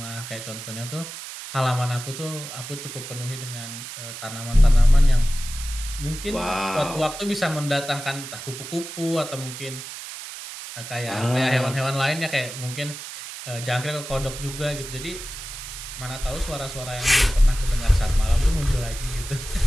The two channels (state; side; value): noise; right; hiss, 10 dB below the sound